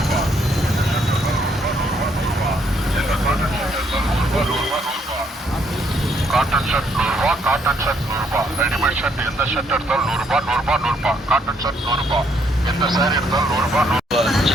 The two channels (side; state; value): both; normal; correlation 0.71